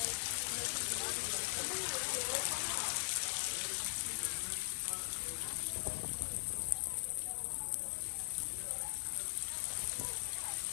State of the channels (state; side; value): silent; right; 51 dB below the other